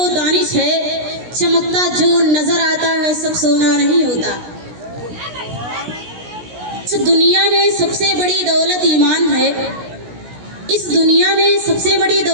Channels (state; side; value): late; left; 16 ms